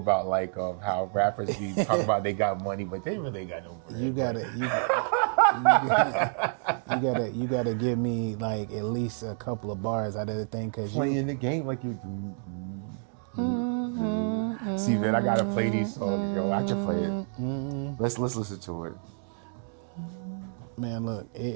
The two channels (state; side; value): silent; left; 59 dB below the other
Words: like how rappers be talking about they got money, but they really got no bread. You gotta give me like at least a couple of bars out of the thing, cause playing the game like you. See, man, I gotta play these songs, yo. I can play it. Let's listen to it. Man, look,